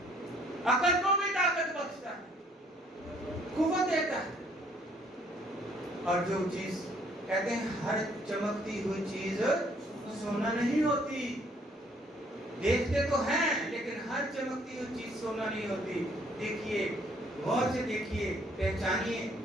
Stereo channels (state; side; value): normal; both; correlation 0.63